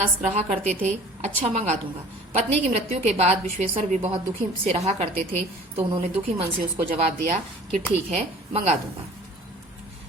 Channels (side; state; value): both; normal; correlation 0.47